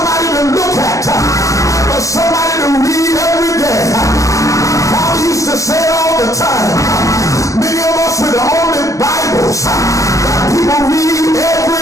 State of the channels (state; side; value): late; right; 0.16 ms